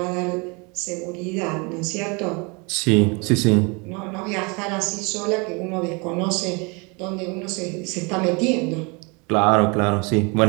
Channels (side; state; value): left; quieter; 29.9 dB